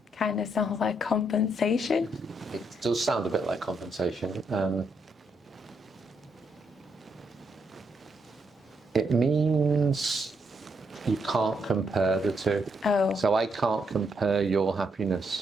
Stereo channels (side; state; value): both; normal; correlation 0.78